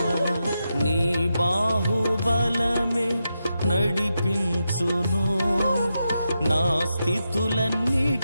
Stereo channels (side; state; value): both; inverted; correlation -0.87